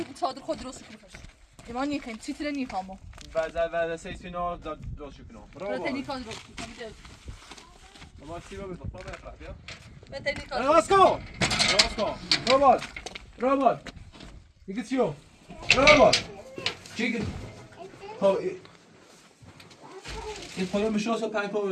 که چادر خود درست کنی باشه ایمان نیکن چیتره نیکامو و سیسینا درست کنم برو تنیکا درست کنم ما سیبا بزن ما بخواه بیا برو تنیکا راسکو رابال دیگه چیو رابال چی خب این خواهی مشاس و پنج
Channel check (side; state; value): both; identical; correlation 1.00